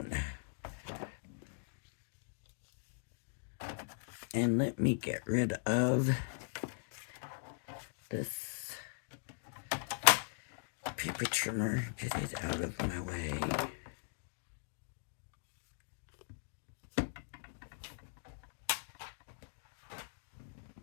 And let me get rid of this paper trimmer. Get it out of my way.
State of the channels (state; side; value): silent; right; digital silence